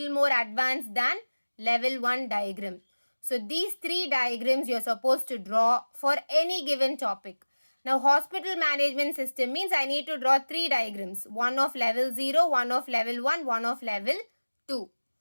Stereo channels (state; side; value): inverted; both; correlation -1.00